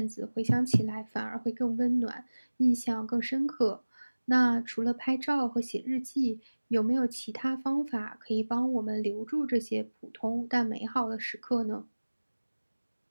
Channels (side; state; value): both; inverted; correlation -1.00